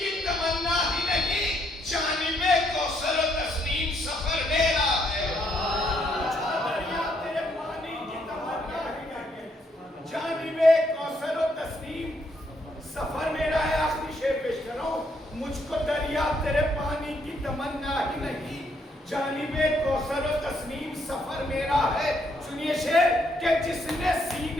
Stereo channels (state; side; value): normal; both; correlation 0.73